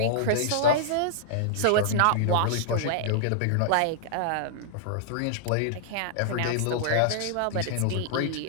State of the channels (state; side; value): different; both; correlation -0.01